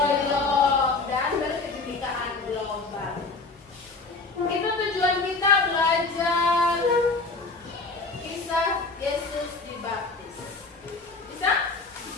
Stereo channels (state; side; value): quieter; right; 3.8 dB